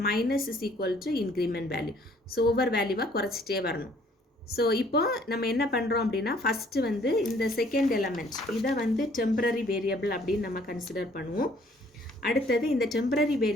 minus is equal to increment value. So ஒவ்வொரு வேல்யூவாக குறைச்சிட்டே வரணும். ஸோ இப்போ நம்ம என்ன பண்ணுறோம் அப்படின்னா ஃபஸ்ட்டு வந்து இந்த செகண்ட் எலமெண்ட் இதை வந்து டெம்பரரி வேரியபிள் அப்படின்னு நம்ம கன்சிடர் பண்ணுவோம். அடுத்தது இந்த டெம்பரரி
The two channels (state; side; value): normal; both; correlation 0.60